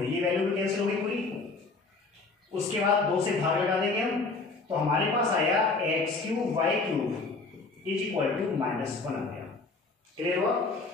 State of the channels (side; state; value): right; quieter; 3.8 dB